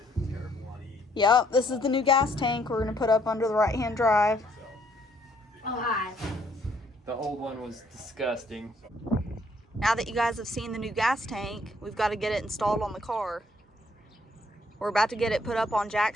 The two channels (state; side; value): normal; both; correlation 0.66